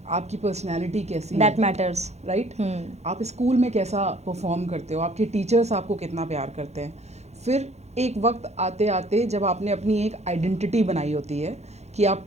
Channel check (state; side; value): late; left; 0.32 ms